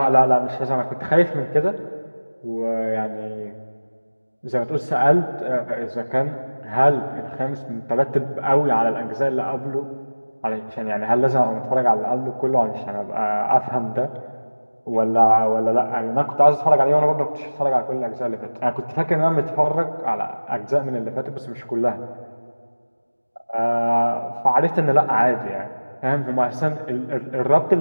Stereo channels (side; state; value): both; inverted; correlation -1.00